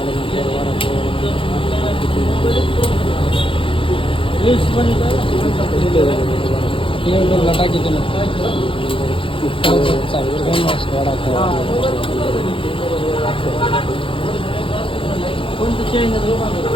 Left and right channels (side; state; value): right; late; 0.25 ms